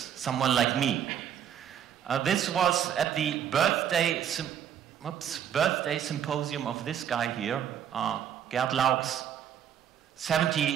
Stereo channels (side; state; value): left; quieter; 9.4 dB